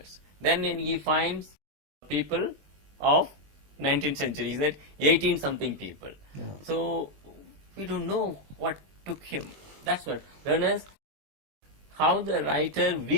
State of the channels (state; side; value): late; left; 21 ms